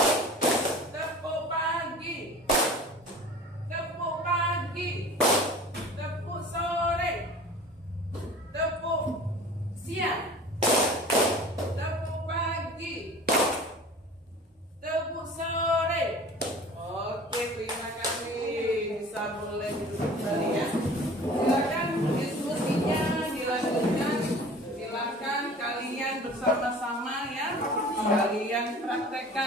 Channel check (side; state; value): both; normal; correlation 0.42